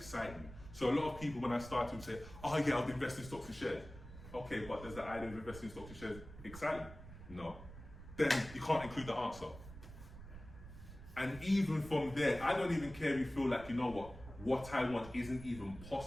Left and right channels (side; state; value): right; noise; rumble, 14 dB below the sound